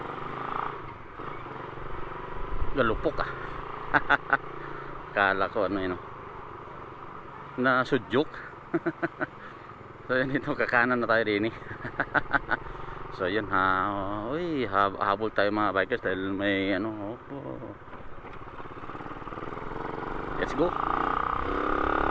galupok kala ko na sudyok. So yun, ito kakanan na tayo rin so yun habol tayo mga bikers dahil may let's go.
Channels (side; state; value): both; identical; correlation 1.00